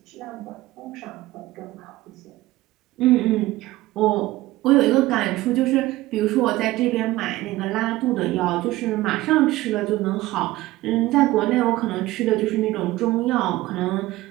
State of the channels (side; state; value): left; quieter; 17.7 dB